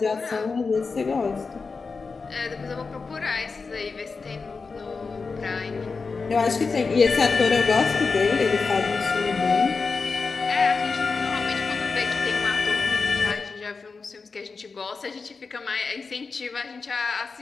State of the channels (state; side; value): quieter; right; 4.5 dB